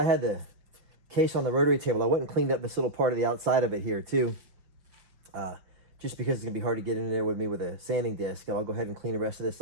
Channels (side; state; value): left; late; 5.9 ms